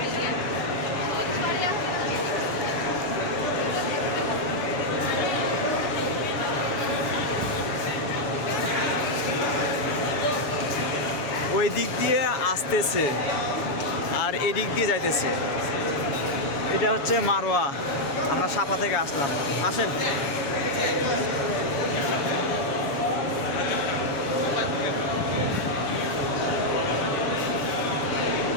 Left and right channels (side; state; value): right; late; 7.1 ms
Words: ওই দিক দিয়ে আসতেছে আর এই দিক দিয়ে যাইতেছে। এটা হচ্ছে মারোয়া, আমরা সাফা থেকে আসলাম। আসেন।